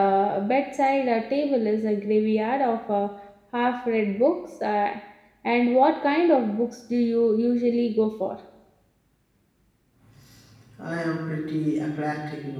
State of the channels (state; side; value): identical; both; correlation 1.00